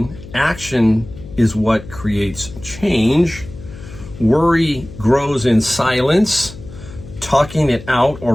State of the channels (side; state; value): left; noise; hum, 16 dB below the sound